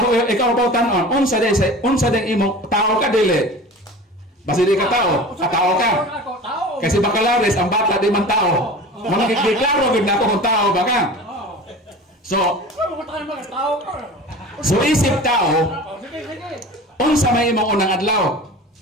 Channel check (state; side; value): normal; both; correlation 0.37